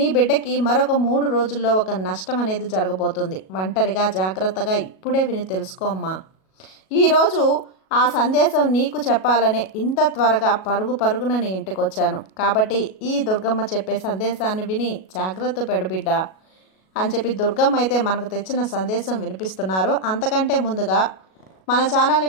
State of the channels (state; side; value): late; right; 37 ms